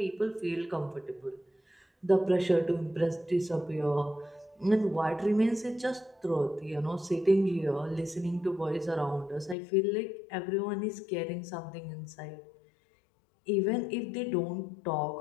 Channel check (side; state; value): right; drops out; at 9.6 s